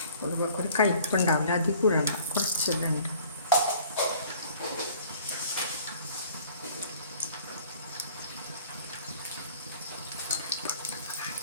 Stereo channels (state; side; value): inverted; both; correlation -0.52